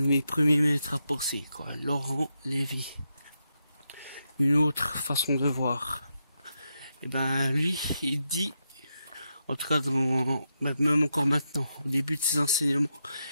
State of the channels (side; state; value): both; inverted; correlation -0.85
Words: de mes premiers maîtres à penser, quoi. Laurent Lévy. Une autre façon de voir. Et ben lui, il dit, en tout cas même encore maintenant, au début de ses enseignements,